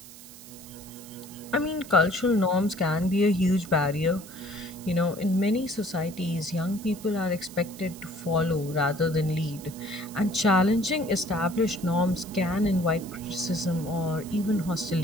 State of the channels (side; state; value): right; noise; hiss, 17 dB below the sound